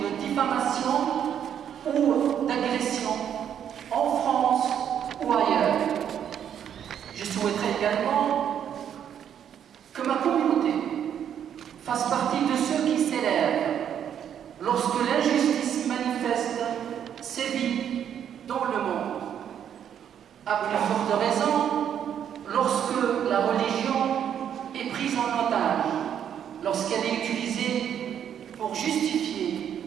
diffamation ou d'agression en France ou ailleurs. Je souhaiterais également que ma communauté fasse partie de ceux qui s'élèvent lorsque l'injustice manifeste sévit dans le monde. À plus forte raison, lorsque la religion est prise en otage, lorsqu'elle est utilisée pour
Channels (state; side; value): quieter; left; 9.1 dB